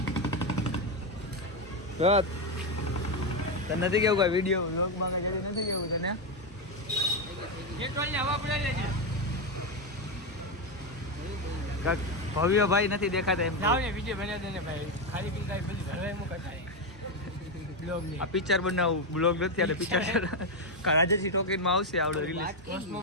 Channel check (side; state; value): both; normal; correlation 0.08